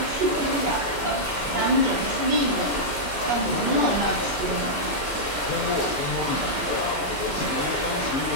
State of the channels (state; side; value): noise; right; hum, 14 dB below the sound